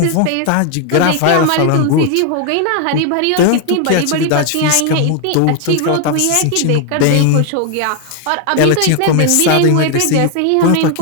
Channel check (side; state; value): both; different; correlation 0.01